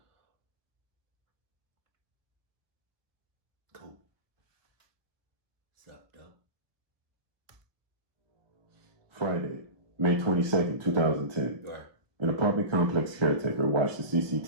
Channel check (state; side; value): late; left; 1.0 ms